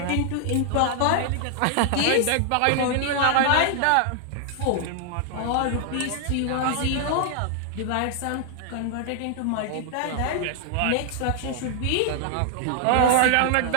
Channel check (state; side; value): different; both; correlation -0.01